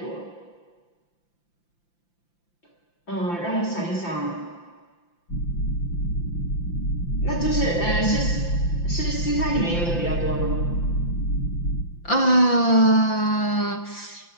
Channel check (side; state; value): right; late; 5.8 ms